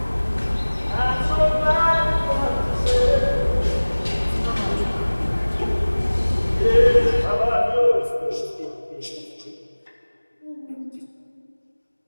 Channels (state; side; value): inverted; both; correlation -1.00